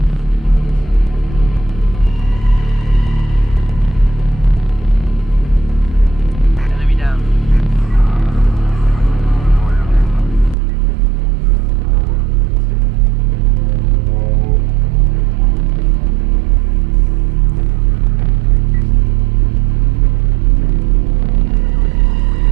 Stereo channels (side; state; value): left; drops out; at 10.6 s